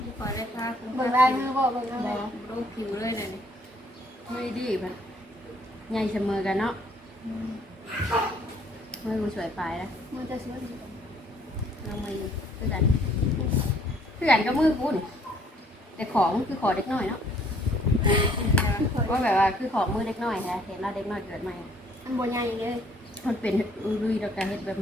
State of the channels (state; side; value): normal; both; correlation 0.62